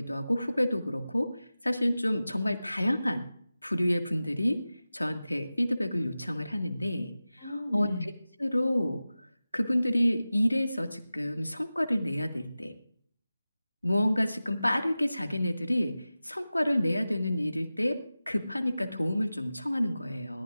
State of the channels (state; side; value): inverted; both; correlation -0.95